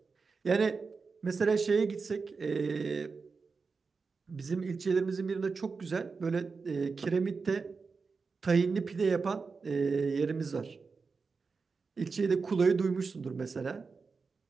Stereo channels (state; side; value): quieter; left; 4.7 dB